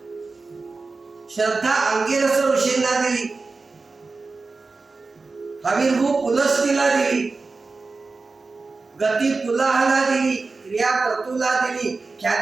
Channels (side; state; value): left; quieter; 3.9 dB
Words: श्रद्धा अंगिरस ऋषींना दिली. हविर्भू पुलस्तीला दिली. गती पुलाहला दिली. क्रिया प्रतुला दिली.